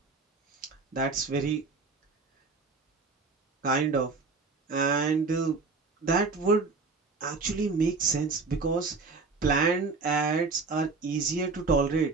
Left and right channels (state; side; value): quieter; left; 4.1 dB